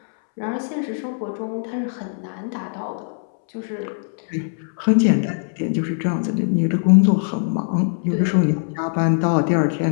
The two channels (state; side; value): silent; right; 65 dB below the other